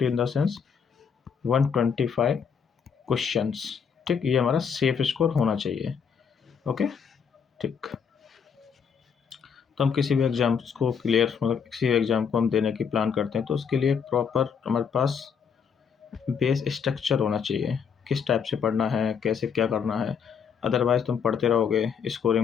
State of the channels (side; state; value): right; quieter; 6.7 dB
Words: इन द सेंस 125 क्वेश्चंस। ठीक, ये हमारा सेफ स्कोर होना चाहिए। ओके, ठीक, तो हम किसी भी एग्ज़ाम्स को क्लियर, मतलब किसी भी एग्ज़ाम को हम देने की प्लान करते हैं तो उसके लिए प्रॉपर हमारे पास बेस स्ट्रक्चर होना चाहिए, किस टाइप से पढ़ना है, कैसे क्या करना है। अदरवाइज़ तुम पढ़ते रहोगे,